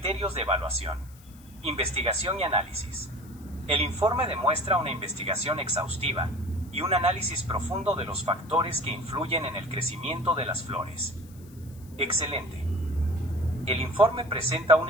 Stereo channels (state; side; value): noise; left; hiss, 25 dB below the sound